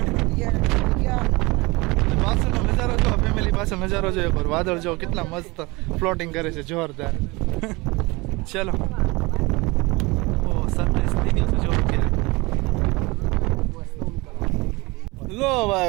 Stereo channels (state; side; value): quieter; left; 24.0 dB